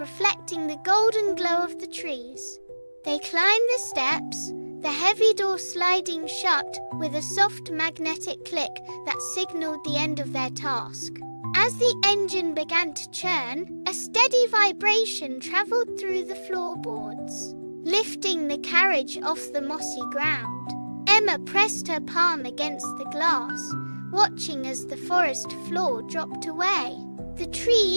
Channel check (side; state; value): both; inverted; correlation -1.00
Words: the golden glow of the trees. They climbed the steps, the heavy door sliding shut with a soft magnetic click that signaled the end of their task. As the engine began to churn, a steady vibration travelled through the floorboards, lifting the carriage off the mossy ground. Emma pressed her palm against the glass, watching as the forest floor dropped away. The